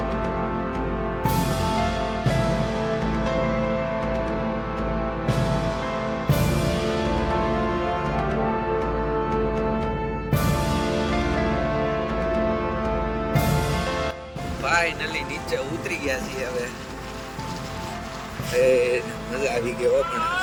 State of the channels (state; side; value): identical; both; correlation 1.00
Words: ફાઇનલી નીચે ઉતરી ગયા છીએ હવે. મજા આવી ગયો પણ